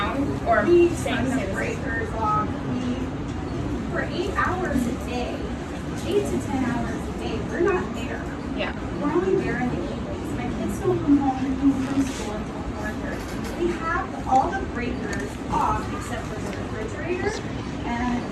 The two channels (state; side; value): identical; both; correlation 1.00